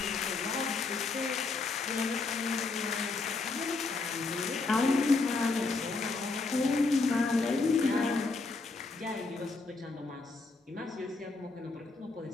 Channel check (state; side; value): quieter; right; 3.8 dB